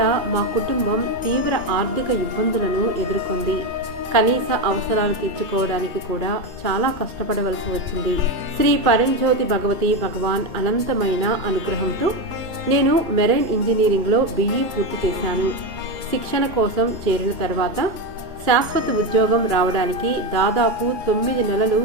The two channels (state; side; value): late; left; 2.3 ms